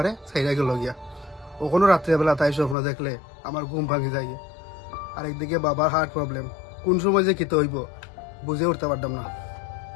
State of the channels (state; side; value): drops out; right; at 2.8 s